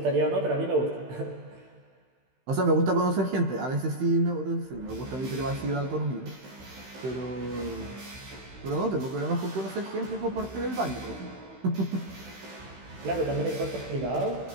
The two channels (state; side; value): late; left; 16 ms